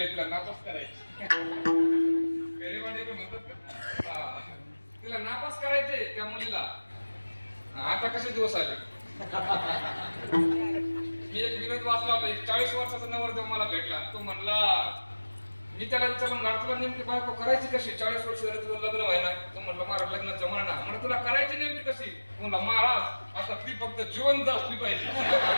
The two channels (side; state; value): both; inverted; correlation -1.00